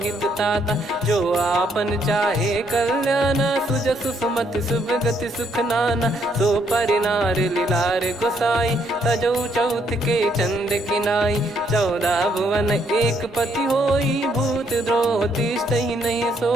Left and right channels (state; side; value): normal; both; correlation 0.71